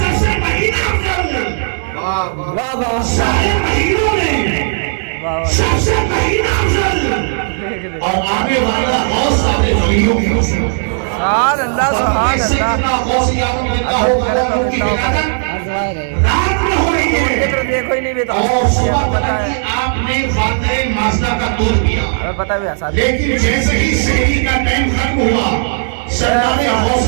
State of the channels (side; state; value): left; silent; digital silence